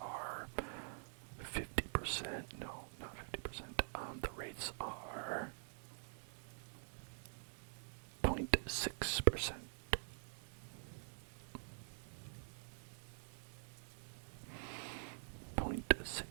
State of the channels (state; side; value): silent; left; digital silence